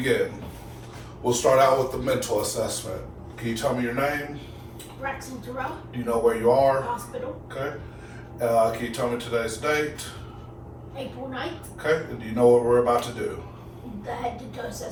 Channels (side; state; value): both; identical; correlation 1.00